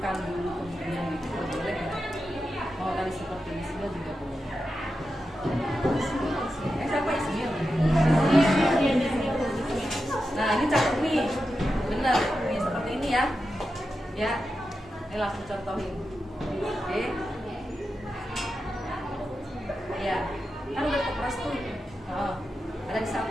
dulu kemudian juga boleh ya. Mau tadi seperti Ismail juga boleh. Siapa Ismail? Nah ini cakep nih, bener. Ini seperti ini ya. Ya, ini langsung contohin. Oke. Ya, kan udah keperas tuh. Oh, ada di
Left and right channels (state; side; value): normal; both; correlation 0.90